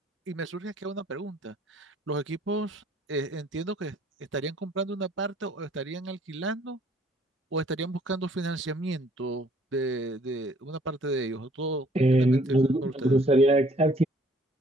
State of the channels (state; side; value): normal; both; correlation 0.60